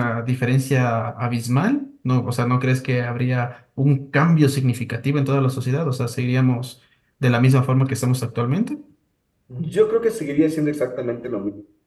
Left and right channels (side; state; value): both; identical; correlation 1.00